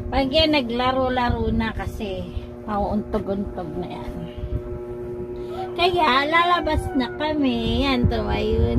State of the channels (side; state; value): both; identical; correlation 1.00